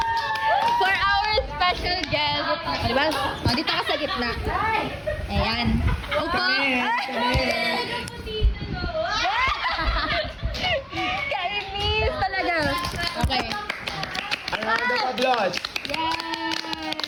For our special guest. Diba? Dito ka sa gitna. Ayan. Upo. Kainis talaga. Okay. Round of applause.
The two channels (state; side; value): identical; both; correlation 1.00